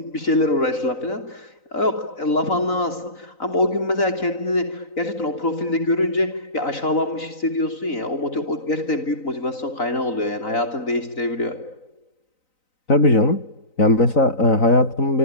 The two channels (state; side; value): late; right; 3.9 ms